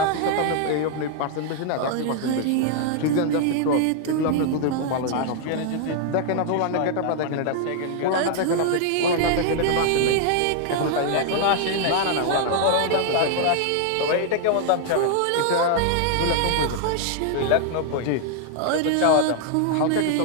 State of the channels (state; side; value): different; both; correlation 0.00